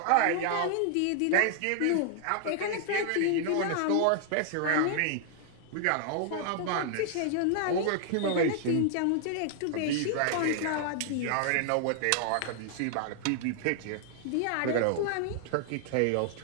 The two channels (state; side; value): different; both; correlation 0.00